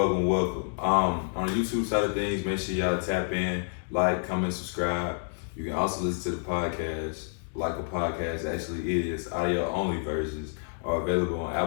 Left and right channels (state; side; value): silent; right; digital silence